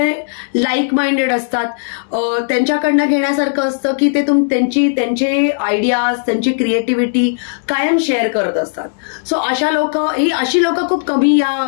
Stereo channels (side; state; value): right; silent; 68 dB below the other